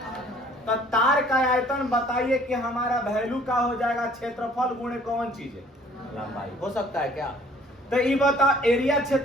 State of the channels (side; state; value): both; normal; correlation 0.56